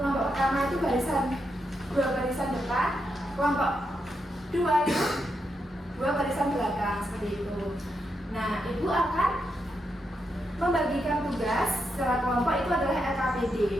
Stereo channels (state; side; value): normal; both; correlation 0.83